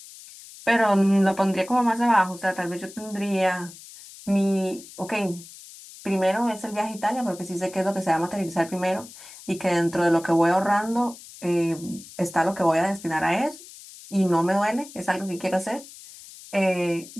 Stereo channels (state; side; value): noise; left; hiss, 18 dB below the sound